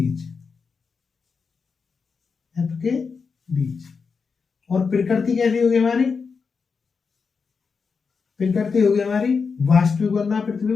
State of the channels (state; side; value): quieter; right; 5.2 dB